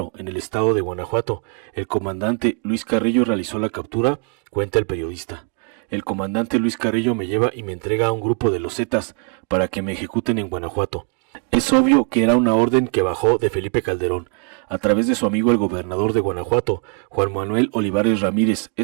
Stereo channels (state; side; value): quieter; left; 35.7 dB